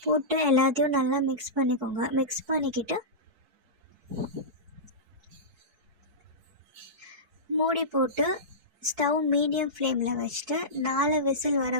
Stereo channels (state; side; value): late; left; 4.6 ms